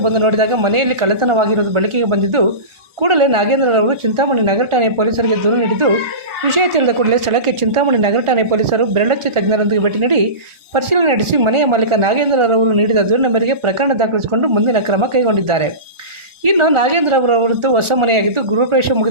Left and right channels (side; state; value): left; late; 1.4 ms